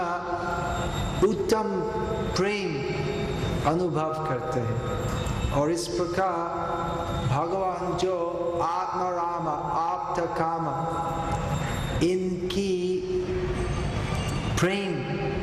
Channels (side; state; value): both; identical; correlation 1.00